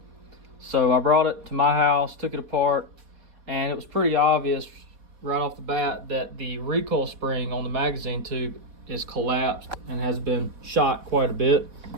So I brought it to my house, took it apart, and it was pretty obvious right off the bat that the recoil spring on the magazine tube is collapsed and has been shot quite a bit.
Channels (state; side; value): late; left; 4.1 ms